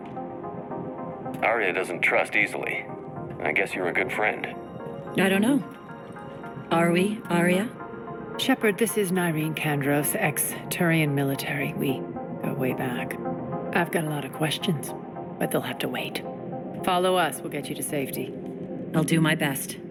Arya doesn't trust easily. I guess you're a good friend. I don't know. Are we, Arya? Shepard, this is Nyreen Kandros, ex-Turian military. We go way back. I've got a lot of questions, but they'll have to wait. Follow us, we'll get you to safety. I'll do my best.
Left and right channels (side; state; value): both; identical; correlation 1.00